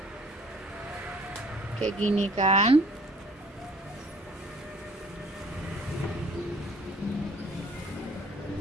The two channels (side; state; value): both; normal; correlation 0.54